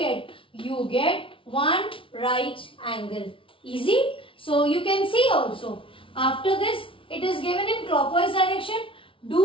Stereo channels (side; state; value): right; late; 0.25 ms